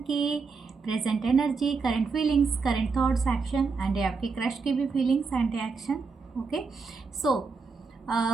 present energy, current feelings, current thoughts, action and आपके क्रश की भी feelings and action. Okay,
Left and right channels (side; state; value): left; quieter; 4.8 dB